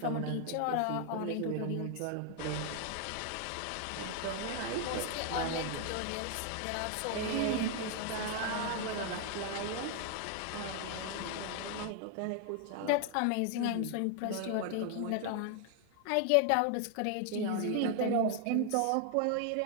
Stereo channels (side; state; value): both; different; correlation 0.00